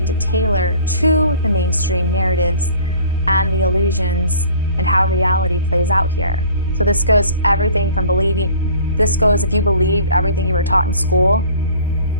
to tailor to the mainstream narratives and the illusions and how reality plays out here. So this goes everything from if you believed everything you were taught in school,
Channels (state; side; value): inverted; both; correlation -0.49